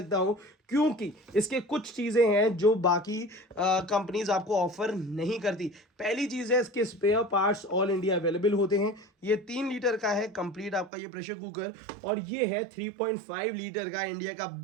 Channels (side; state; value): left; drops out; at 10.9 s